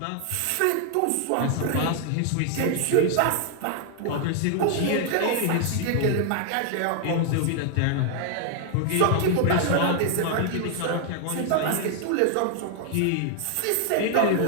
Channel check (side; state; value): both; different; correlation -0.01